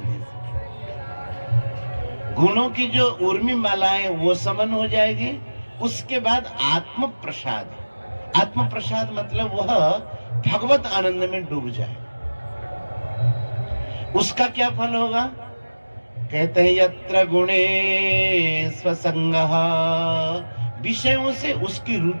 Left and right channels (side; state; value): both; inverted; correlation -1.00